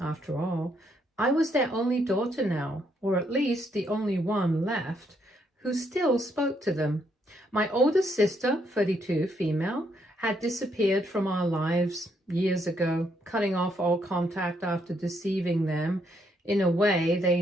all, I was their only daughter now, or at least the only one left, who still spoke to them. My older sister, 32, female, had disappeared from our lives years ago, cutting off all contact after deceiving them in a way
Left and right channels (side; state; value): both; normal; correlation 0.74